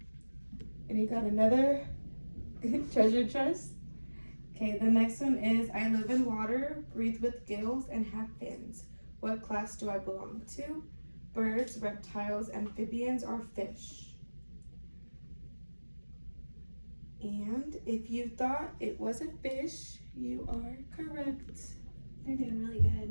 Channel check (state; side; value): inverted; both; correlation -1.00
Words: And you got another treasure chest. Okay, the next one is, I live in water, breathe with gills, and have fins. What class do I belong to? Birds, reptiles, amphibians, or fish? And if you thought it was a fish, you are correct. They're doing really